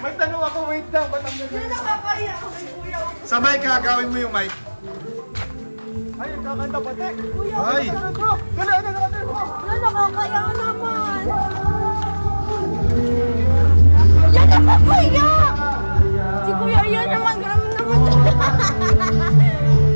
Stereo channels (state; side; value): inverted; both; correlation -1.00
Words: tanong ako, wait lang, ba't ang Hindi ganda-ganda ko? nakakaya ako kay kuya. Sa mic ha, gawin mo yung mic. Ay, kakanta pa, Tek. Kuya, Ay. ano bro? Gala, ano bro? Wala nakakaya naman. Yan naman kuya. Si kuya yan naman, grabe naman.